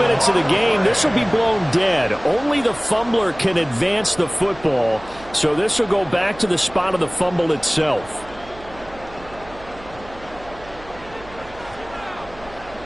of the game, this will be blown dead. Only the fumbler can advance the football. So this will go back to the spot of the fumble itself.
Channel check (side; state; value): right; noise; hum, 20 dB below the sound